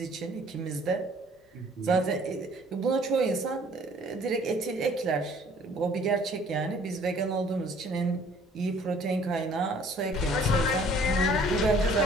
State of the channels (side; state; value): both; normal; correlation 0.56